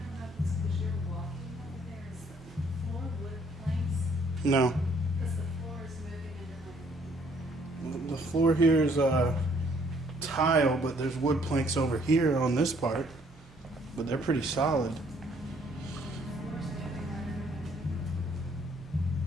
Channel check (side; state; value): both; normal; correlation 0.64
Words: No. Because the floor is moving under my. The floor here is tile, but there's wood planks over here on this part. But they're pretty solid.